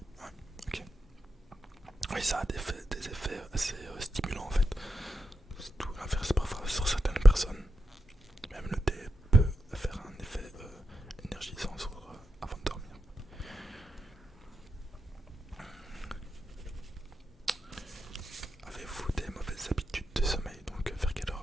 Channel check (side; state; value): both; normal; correlation 0.87